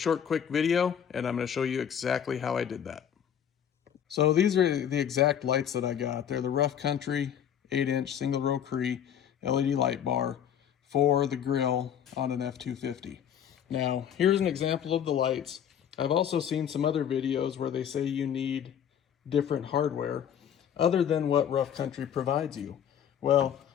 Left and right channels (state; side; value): quieter; right; 9.0 dB